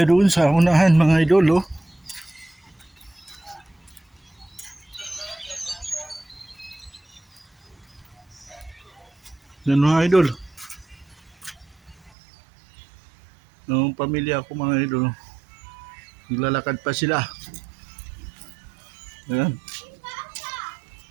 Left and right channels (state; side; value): drops out; left; at 12.1 s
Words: doon sa unahan mga idol, oh. Yan mga idol. Noong pamilya ko mga idol, naglalakad pa sila. Ayan.